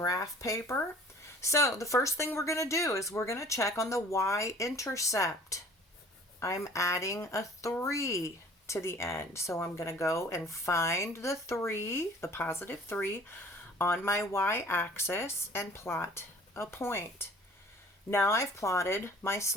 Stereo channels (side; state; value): both; normal; correlation 0.50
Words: paper. So the first thing we're going to do is we're going to check on the y-intercept. I'm adding a 3 to the end. So I'm going to go and find the 3, the positive 3, on my y-axis and plot a point. Now I've plotted my